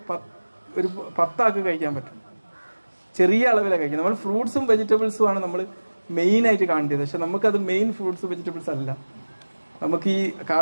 ഒരു 10 ആൾക്ക് കഴിക്കാൻ പറ്റും. ചെറിയ അളവിലാണ് കഴിക്കുന്നത്. നമ്മൾ ഫ്രൂട്ട്സും വെജിറ്റബിൾസും ആണ് നമ്മൾ മെയിനായിട്ട് കാണേണ്ടത്. പക്ഷെ നമുക്കത് മെയിൻ ഫ്രൂട്ട്സ് വെജിറ്റബിൾസ് അല്ല. നമുക്ക് ഈ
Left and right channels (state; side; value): inverted; both; correlation -1.00